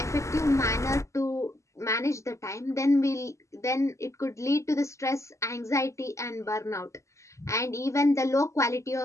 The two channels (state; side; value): late; right; 0.14 ms